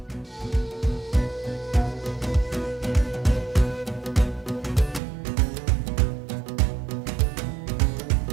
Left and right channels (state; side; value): drops out; left; at 5.0 s